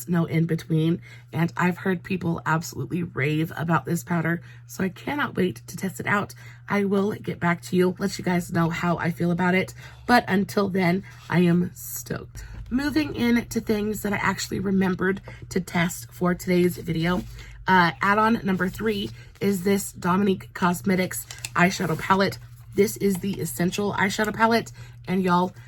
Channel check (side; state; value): both; identical; correlation 1.00